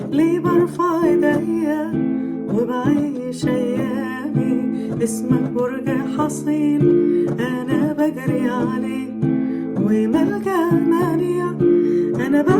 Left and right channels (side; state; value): both; identical; correlation 1.00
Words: ليه برفع ايديا وبعيش أيامي. اسمك برج حصين أنا بجري عليه، وملجأ منيع أنا